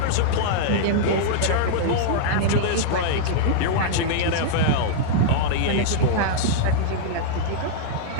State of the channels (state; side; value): different; both; correlation -0.02